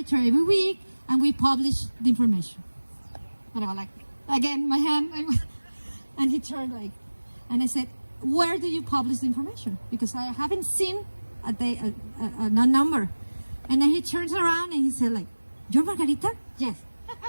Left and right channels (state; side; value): inverted; both; correlation -1.00